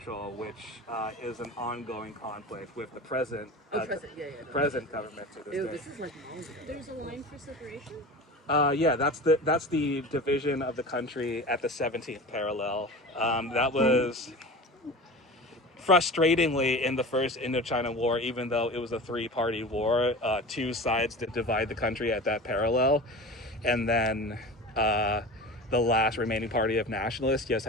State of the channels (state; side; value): normal; both; correlation 0.33